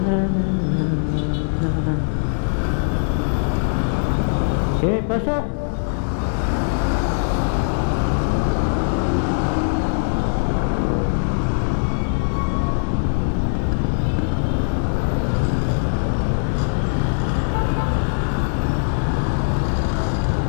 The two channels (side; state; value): right; silent; digital silence